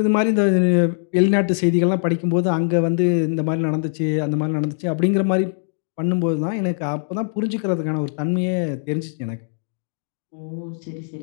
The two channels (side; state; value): right; silent; digital silence